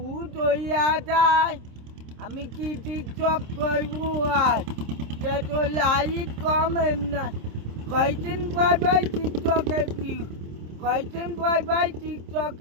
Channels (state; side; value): late; left; 26 ms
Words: তৈয়া যায় আমি কি টিকটক করবো আই তে তো লাইট কমেন না কয়দিন পর টিকটকে পিহু কয়দিন পর